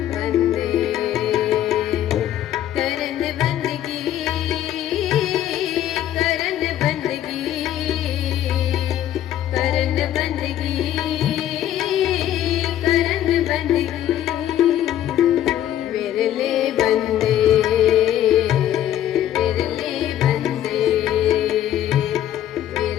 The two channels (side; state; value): right; quieter; 11.7 dB